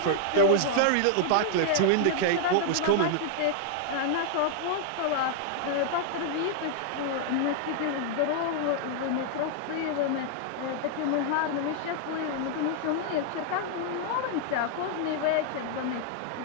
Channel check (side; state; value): both; different; correlation 0.00